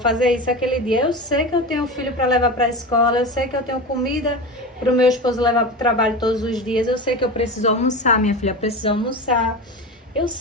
isso aquele dia. Eu sei que eu tenho filho para levar para a escola, eu sei que eu tenho comida para o meu esposo levar para o trabalho todos os dias. Eu sei que eu preciso almoçar, minha filha precisa almoçar. Eu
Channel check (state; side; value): normal; both; correlation 0.26